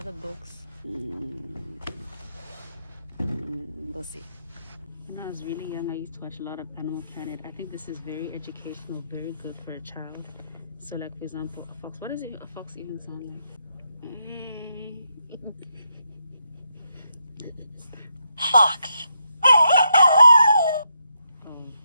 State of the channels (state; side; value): inverted; both; correlation -0.81